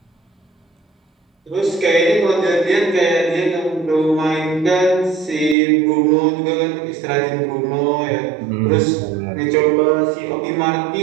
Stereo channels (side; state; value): left; drops out; at 5.6 s